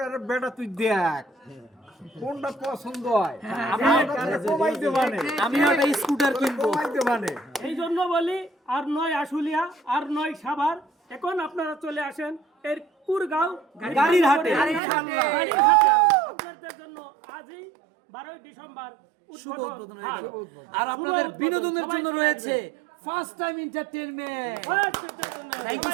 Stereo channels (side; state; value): left; drops out; at 14.8 s